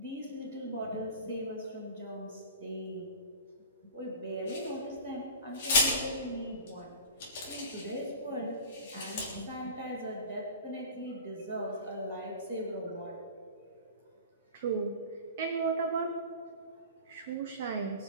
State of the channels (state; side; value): inverted; both; correlation -0.37